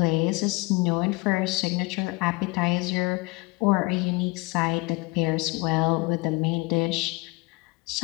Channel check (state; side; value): quieter; right; 25.2 dB